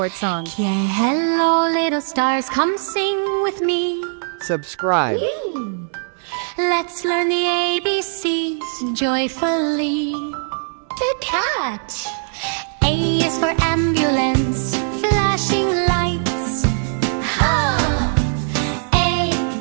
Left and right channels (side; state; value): left; silent; digital silence